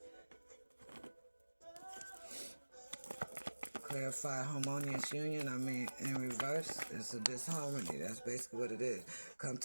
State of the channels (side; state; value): both; inverted; correlation -1.00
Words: Clarify harmonious union. I mean, in reverse, it's a disharmony. That's basically what it is. Come